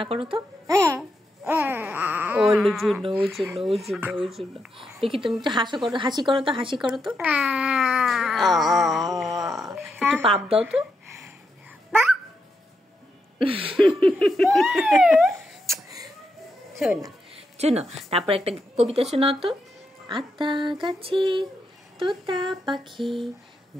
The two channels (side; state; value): both; normal; correlation 0.83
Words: করো তো। ওর জন্য দেখি তুমি একটু হাসি করো তো একটু পাপ দাও তো। শোনো তারপর একটা কবিতা শোনাও তো। আতা গাছে তোতা পাখি,